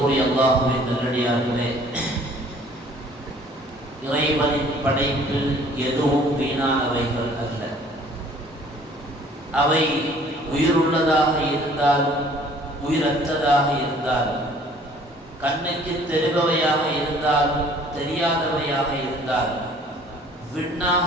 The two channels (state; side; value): normal; both; correlation 0.55